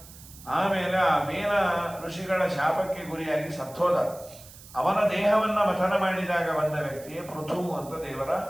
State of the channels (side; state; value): right; noise; hiss, 19 dB below the sound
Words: ಆಮೇಲೆ ಆ ವೇನ ಋಷಿಗಳ ಶಾಪಕ್ಕೆ ಗುರಿಯಾಗಿ ಸತ್ತೋದ. ಅವನ ದೇಹವನ್ನ ಮಥನ ಮಾಡಿದಾಗ ಬಂದ ವ್ಯಕ್ತಿಯೇ ಪೃಥು ಅಂತ ದೇವರ